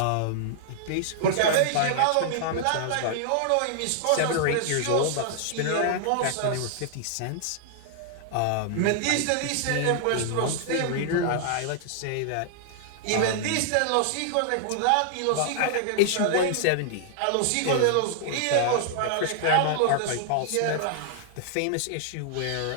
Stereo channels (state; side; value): different; both; correlation -0.01